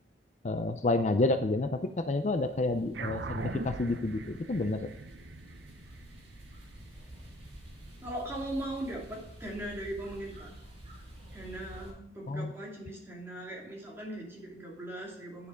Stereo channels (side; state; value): both; normal; correlation 0.52